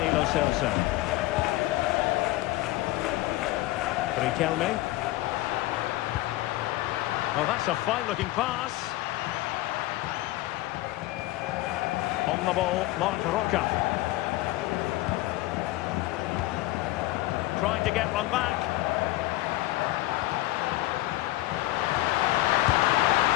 Lo Celso. Riquelme. Oh, that's a fine-looking pass. On the ball, Marc Roca. Trying to get one back.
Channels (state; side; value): quieter; right; 17.6 dB